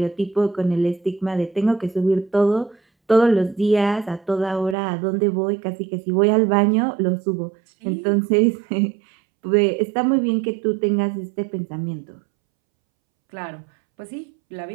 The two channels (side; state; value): left; drops out; at 4.8 s